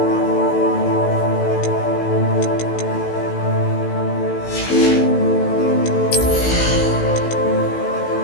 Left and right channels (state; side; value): late; right; 16 ms